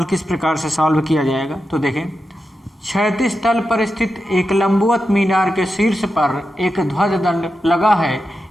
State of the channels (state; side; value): normal; both; correlation 0.89